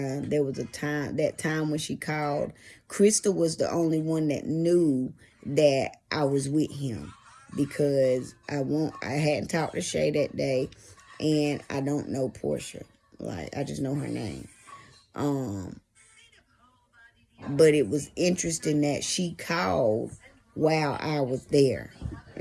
was that time when she called, Crystal was the only one that knew that I was with him because I hadn't talked to Shay that day, and I don't know Porscha. Like, I just know her name. But it was interesting that she called while I was there.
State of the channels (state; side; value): identical; both; correlation 1.00